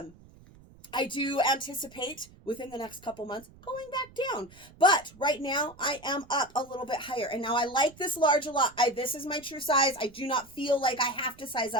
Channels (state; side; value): noise; right; rumble, 23 dB below the sound